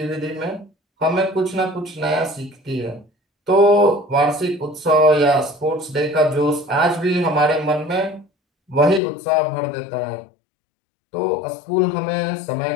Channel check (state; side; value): drops out; right; at 9.0 s